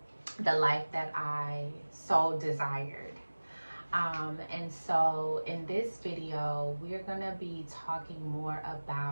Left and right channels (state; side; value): inverted; both; correlation -1.00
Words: the life that I so desired? And so in this video, we're gonna be talking more